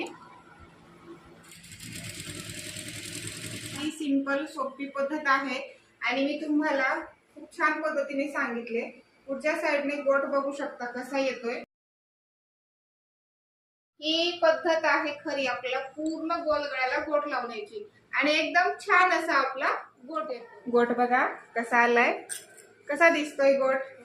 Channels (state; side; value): identical; both; correlation 1.00